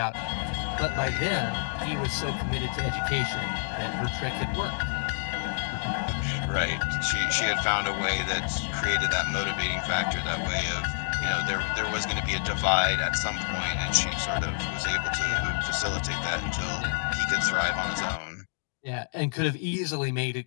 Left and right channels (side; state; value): right; silent; digital silence